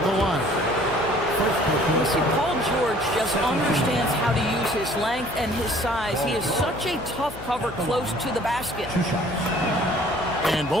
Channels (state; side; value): noise; left; hum, 16 dB below the sound